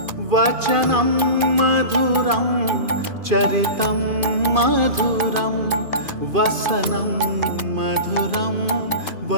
वचनं मधुरं चरितं मधुरं वसनं मधुरं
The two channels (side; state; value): left; late; 2.5 ms